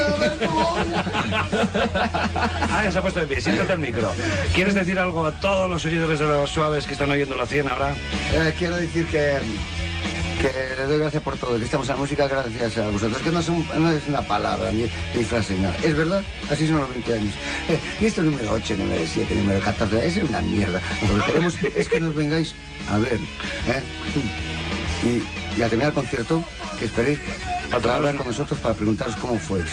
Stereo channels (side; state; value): both; identical; correlation 1.00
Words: de Alberto. Ya se ha puesto de pie, siéntate al micro. ¿Quieres decir algo a todos los seguidores de Los Suaves que están oyendo la 100 ahora? Quiero decir que les doy gracias por todo, que estamos en la música gracias a vosotros, que no es una palabra ni frase, nada. Es verdad, así son los 20 años. Y esto número 8, número 7, número 14, es una mierda. Lo que queremos es que nos vengáis a ver, y al terminar el concierto, que esperéis para hablar con nosotros para preguntaros cómo fue